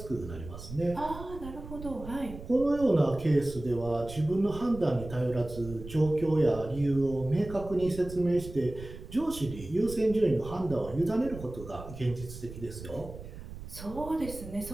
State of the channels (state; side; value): noise; right; rumble, 12 dB below the sound